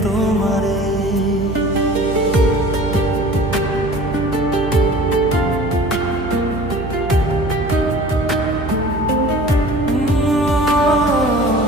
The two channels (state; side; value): noise; right; hum, 8 dB below the sound